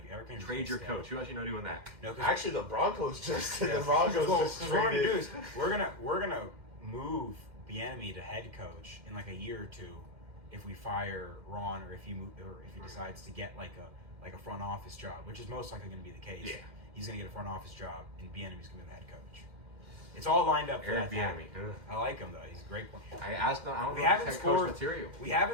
Eric Bieniemy Trade your stay. coach. Who else you know doing that? No, 'cause- Actually, the Broncos just Yeah. the Broncos Well, just what we're gonna do traded. is we're gonna move Bieniemy to head coach in like a year or two if we fire Ron or if he decides to get like a front office job, which is most likely going to be the case. Yeah. He's going to get a front office job and Bieniemy's going to be the head coach. It's all lined up for Eric that to happen. Bieniemy. Ugh. I like him though. He's a great player. I don't know We if haven't he's head coach scored material. We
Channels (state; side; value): late; left; 2.1 ms